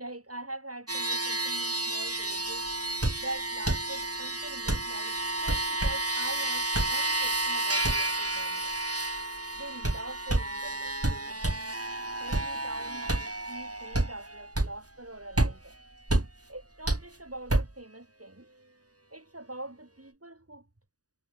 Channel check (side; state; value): left; late; 0.68 ms